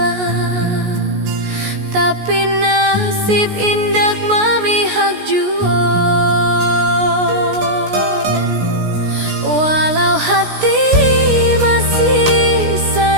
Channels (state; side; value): late; left; 17 ms